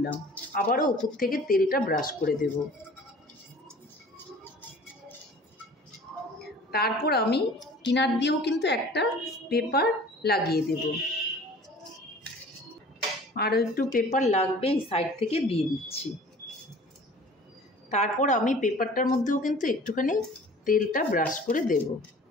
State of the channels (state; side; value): normal; both; correlation 0.46